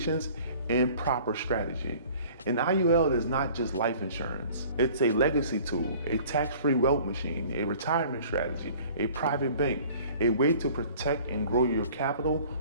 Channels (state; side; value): inverted; both; correlation -0.49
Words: and proper strategy. An IUL is not just life insurance. It's a legacy tool, a tax-free wealth machine, a retirement strategy, a private bank, a way to protect and grow your capital